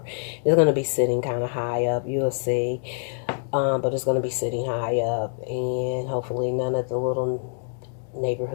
It's going to be sitting kind of high up. You'll see. But it's going to be sitting high up. And hopefully none of the little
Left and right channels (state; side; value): silent; right; 58 dB below the other